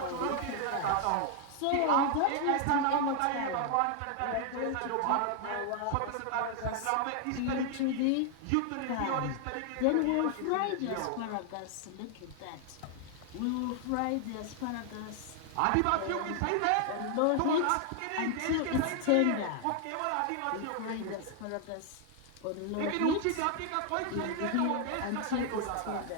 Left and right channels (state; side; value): different; both; correlation 0.00